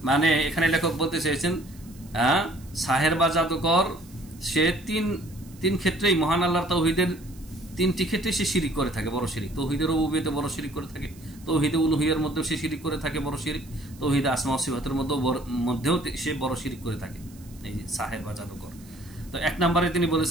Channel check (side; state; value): right; noise; hiss, 24 dB below the sound